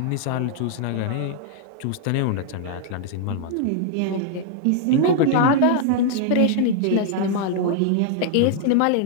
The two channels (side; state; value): both; different; correlation -0.01